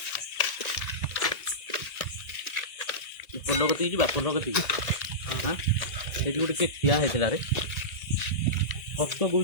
पोलगती जी पोलगती हां एटी गोटे के ठिया हेतला रे फटो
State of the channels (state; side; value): late; right; 1.8 ms